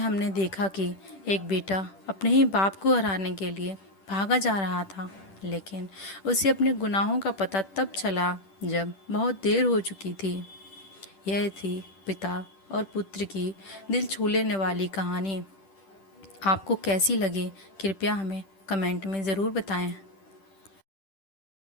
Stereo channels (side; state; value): right; late; 10 ms